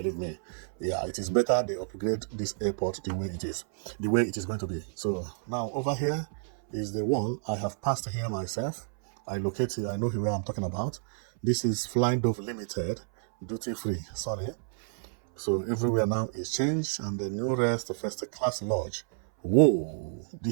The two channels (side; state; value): left; silent; 58 dB below the other